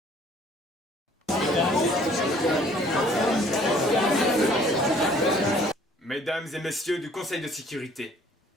Mesdames et messieurs du Conseil de sécurité,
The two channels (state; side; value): normal; both; correlation 0.57